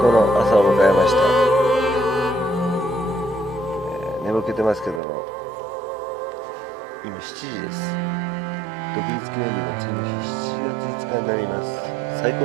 の朝を迎えました。眠気てますけども、今7時です。独立記念日の次の日、7月5日になります。最高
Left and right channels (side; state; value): left; drops out; at 5.0 s